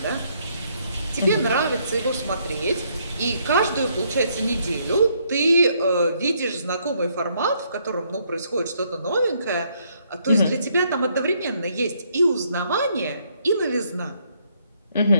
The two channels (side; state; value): both; inverted; correlation -0.71